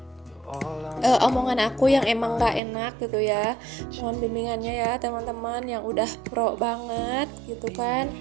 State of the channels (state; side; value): drops out; left; at 2.6 s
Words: omongan aku yang emang gak enak gitu ya. Mohon bimbingannya ya teman-teman yang udah pro banget gitu kan.